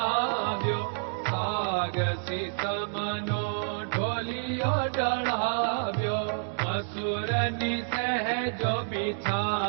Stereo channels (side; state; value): left; silent; digital silence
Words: સાગસી સમનો ઢોલિયો ડળાવ્યો. મસૂરની સહેજો